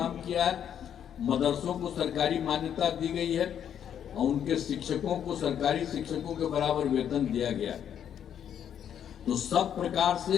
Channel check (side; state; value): right; quieter; 9.1 dB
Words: किया है। मदरसों को सरकारी मान्यता दी गई है और उनके शिक्षकों को सरकारी शिक्षकों के बराबर वेतन दिया गया। तो सब प्रकार से